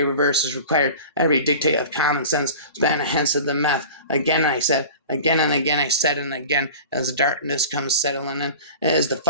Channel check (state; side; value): inverted; both; correlation -0.37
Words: reverse is required. Every dictate of common sense span hence of the meth. Again I said, again and again I said, and again, as the darkness comes settling in, it is the